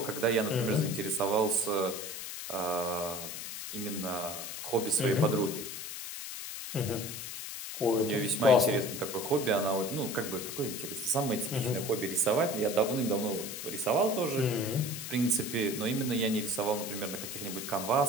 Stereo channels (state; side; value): noise; left; hiss, 7 dB below the sound